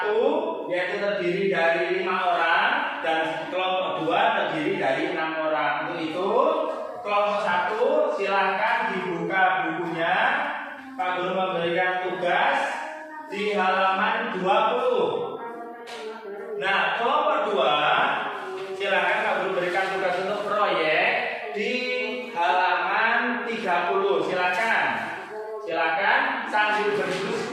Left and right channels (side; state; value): both; identical; correlation 1.00